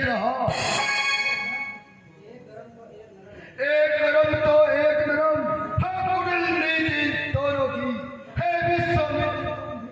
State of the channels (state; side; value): identical; both; correlation 1.00